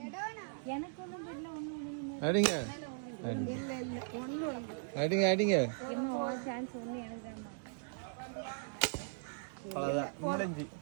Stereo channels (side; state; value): left; silent; digital silence